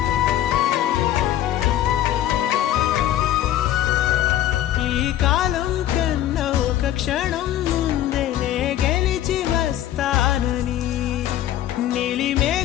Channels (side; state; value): right; quieter; 12.5 dB